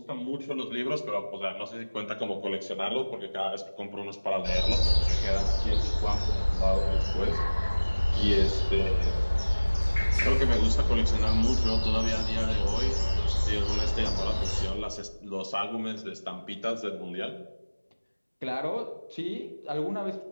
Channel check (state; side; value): inverted; both; correlation -1.00